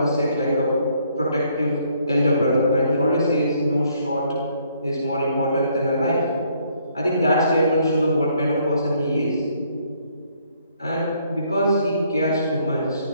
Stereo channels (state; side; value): inverted; both; correlation -0.67